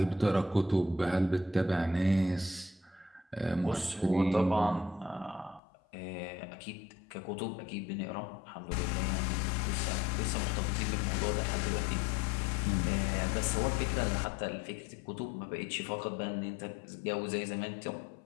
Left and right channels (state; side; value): drops out; right; at 5.6 s